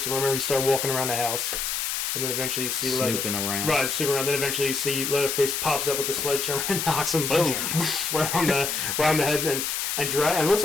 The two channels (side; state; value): left; noise; hiss, 1 dB below the sound